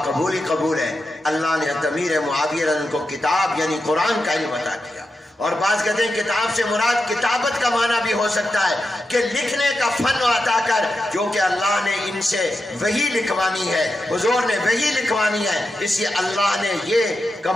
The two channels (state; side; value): normal; both; correlation 0.89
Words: قبول ہی قبول ہے. اللہ نے امیر معاویہ ان کو کتاب یعنی قرآن کا علم عطا کیا. اور بعض کہتے ہیں کتاب سے مراد کتابت کا معنی بھی ہو سکتا ہے کہ لکھنے کا فن عطا کر، کیونکہ اللہ نے ان سے وحی لکھوانی ہے، حضور نے وحی لکھوانی ہے، اس لیے اللہ نے یہ